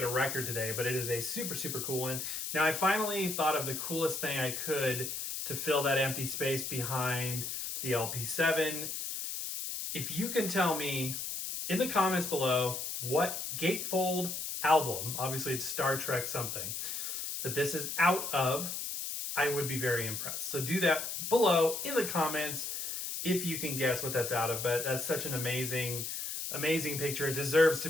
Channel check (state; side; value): noise; left; hiss, 4 dB below the sound